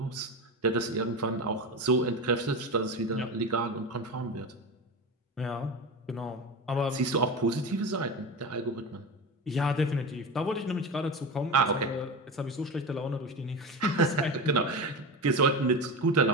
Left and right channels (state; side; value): normal; both; correlation 0.23